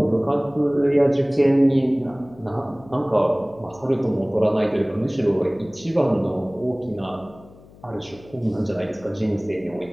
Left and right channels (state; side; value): noise; left; hum, 23 dB below the sound